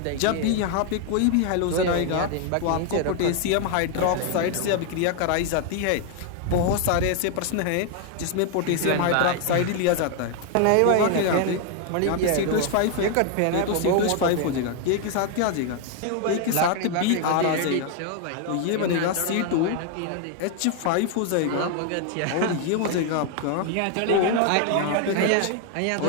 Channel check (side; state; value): both; different; correlation 0.00